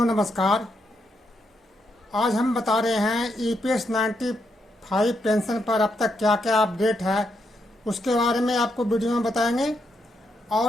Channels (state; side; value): normal; both; correlation 0.80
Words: नमस्कार। आज हम बता रहे हैं ईपीएस 95 पेंशन पर अब तक क्या क्या अपडेट है उसके बारे में आपको वीडियो में बताएंगे।